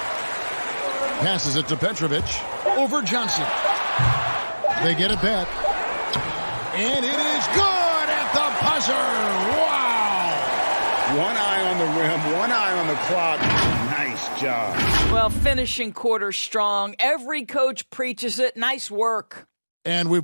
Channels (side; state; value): both; inverted; correlation -1.00